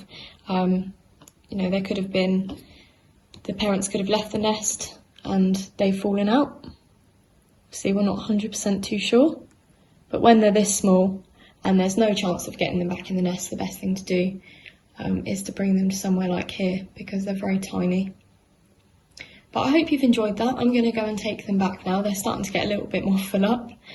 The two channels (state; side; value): identical; both; correlation 1.00